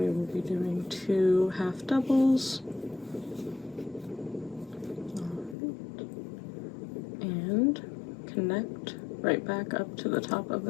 will be doing 2 half doubles. Alright. And connect right back up to the top of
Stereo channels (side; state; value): right; drops out; at 5.6 s